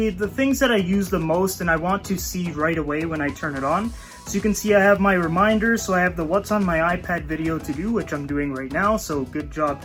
the things that I use the most and I want to see right away when I turn it on. So you can see I have my reminders, so I have the what's on my iPad video to do, which I'm doing right now, so good job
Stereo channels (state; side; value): identical; both; correlation 1.00